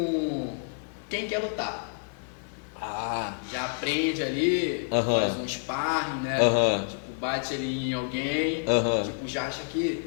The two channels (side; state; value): right; silent; digital silence